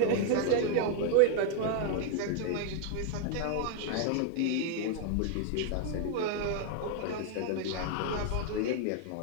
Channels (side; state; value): both; different; correlation 0.00